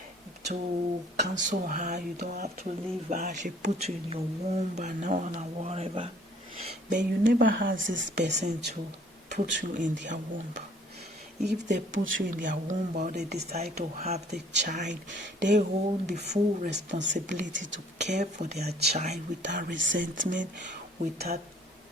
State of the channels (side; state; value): both; normal; correlation 0.57